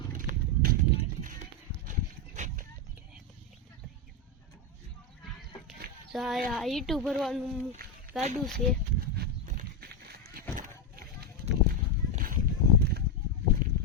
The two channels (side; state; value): both; normal; correlation 0.06